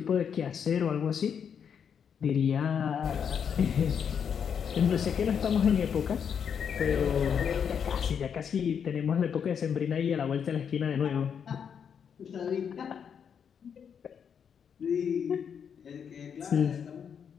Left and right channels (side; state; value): right; quieter; 7.4 dB